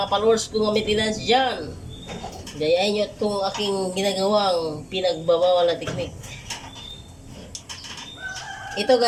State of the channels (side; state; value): both; identical; correlation 1.00